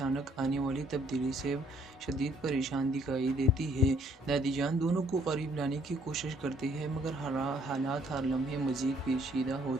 آنے والی تبدیلی سے شدید پریشان دکھائی دیتی ہے۔ دادی جان دونوں کو قریب لانے کی کوشش کرتی ہے، مگر حالات ہر لمحے مزید پیچیدہ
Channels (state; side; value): normal; both; correlation 0.64